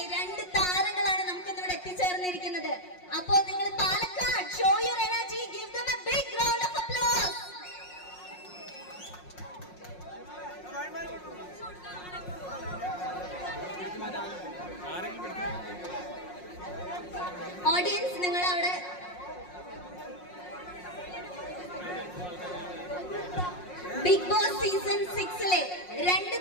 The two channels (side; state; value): right; late; 5.5 ms